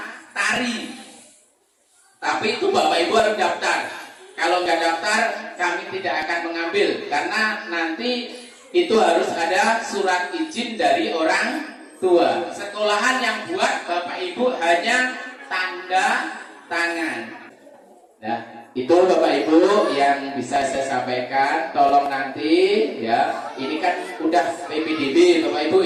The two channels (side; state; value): both; identical; correlation 1.00